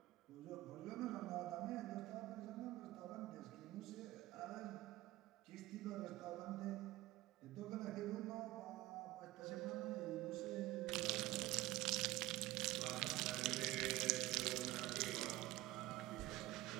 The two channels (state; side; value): quieter; left; 17.3 dB